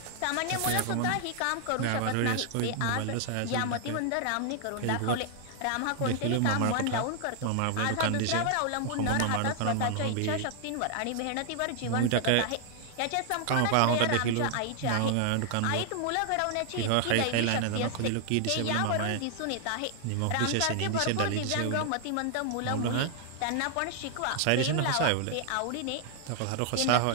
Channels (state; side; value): different; both; correlation 0.00